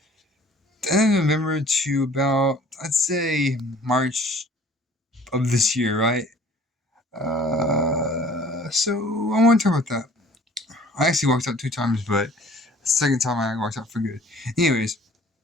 to about, I'd say, March of this year, right? So I want to talk about that. I actually walked out 2 times, but the second time I walked out for good. Anyways,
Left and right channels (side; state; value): both; normal; correlation 0.52